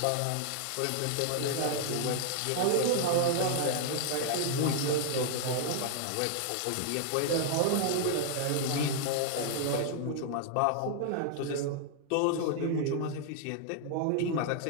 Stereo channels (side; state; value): both; different; correlation 0.00